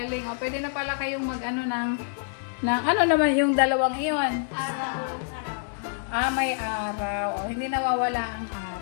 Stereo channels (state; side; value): silent; right; digital silence